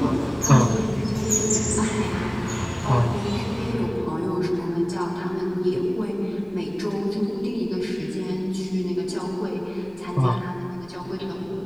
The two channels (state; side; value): noise; left; rumble, 25 dB below the sound